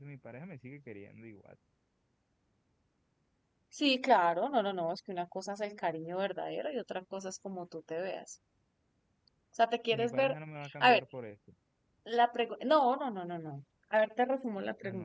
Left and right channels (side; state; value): both; identical; correlation 1.00